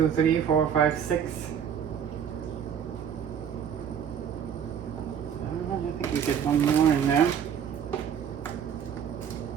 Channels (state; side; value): quieter; left; 8.3 dB